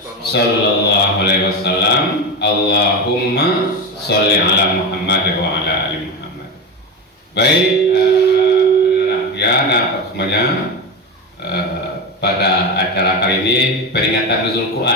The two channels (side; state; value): both; normal; correlation 0.19